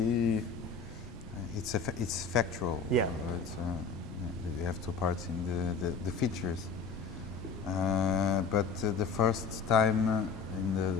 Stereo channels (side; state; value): right; quieter; 5.0 dB